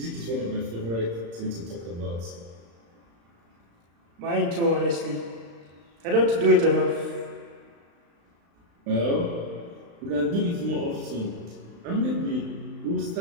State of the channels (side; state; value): left; late; 35 ms